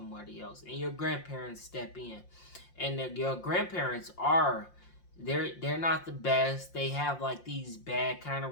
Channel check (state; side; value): late; right; 5.7 ms